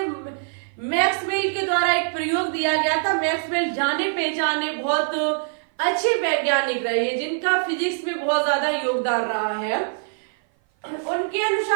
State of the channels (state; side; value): silent; left; 56 dB below the other